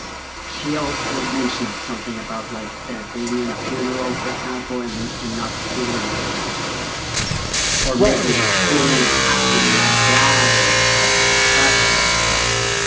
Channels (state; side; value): identical; both; correlation 1.00